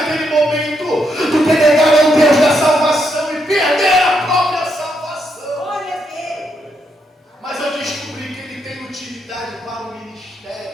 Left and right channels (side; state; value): both; normal; correlation 0.79